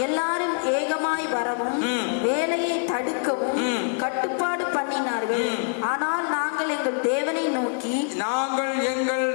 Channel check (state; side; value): silent; right; digital silence